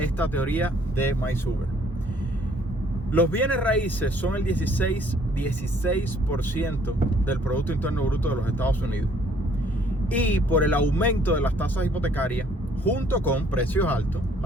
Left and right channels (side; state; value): both; normal; correlation 0.61